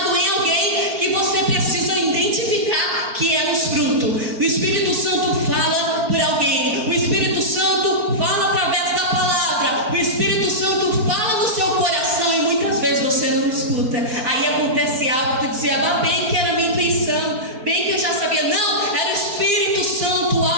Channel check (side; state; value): left; late; 4.4 ms